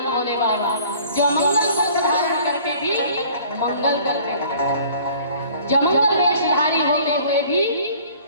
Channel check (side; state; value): both; inverted; correlation -0.51